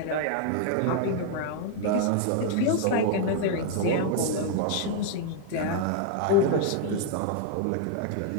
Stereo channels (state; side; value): different; both; correlation 0.00